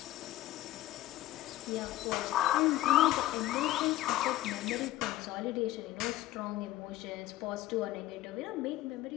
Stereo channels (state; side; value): quieter; right; 15.1 dB